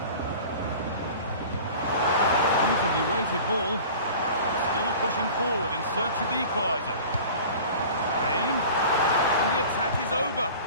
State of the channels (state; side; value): inverted; both; correlation -0.41